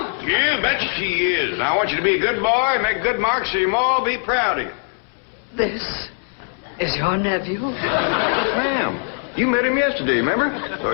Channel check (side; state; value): right; silent; 65 dB below the other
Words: Yeah, betcha she is. I want you to be a good boy, make good marks so your ma will be proud of you. This is your nephew? Ma'am, you met him yesterday, remember? Of